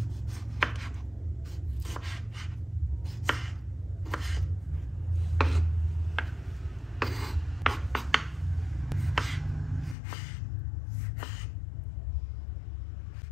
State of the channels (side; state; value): right; drops out; at 10.0 s